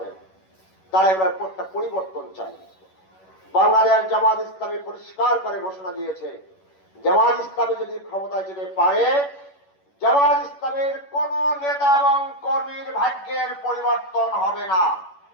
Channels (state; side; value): late; right; 11 ms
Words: তারা এবার একটা পরিবর্তন চাই। বাংলাদেশ জামাত ইসলামী পরিষ্কার করে ঘোষণা দিয়েছে, জামাত ইসলামী যদি ক্ষমতায় যেতে পারে, জামাত ইসলামের কোন নেতা এবং কর্মীর ভাগ্যের পরিবর্তন হবে না।